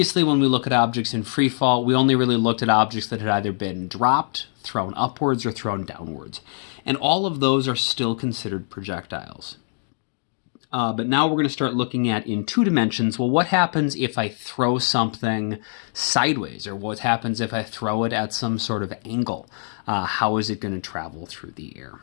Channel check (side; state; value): right; silent; 59 dB below the other